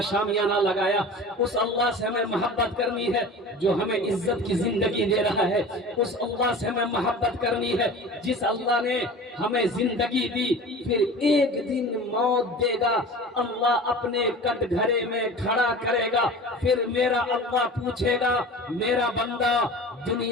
شامیانہ لگایا، اس اللہ سے ہمیں محبت کرنی ہے جو ہمیں عزت کی زندگی دے رہا ہے، اس اللہ سے ہمیں محبت کرنی ہے جس اللہ نے ہمیں زندگی دی پھر ایک دن موت دے گا، اللہ اپنے کٹ گھرے میں کھڑا کرے گا، پھر میرا اللہ پوچھے گا میرا بندہ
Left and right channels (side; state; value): both; normal; correlation 0.37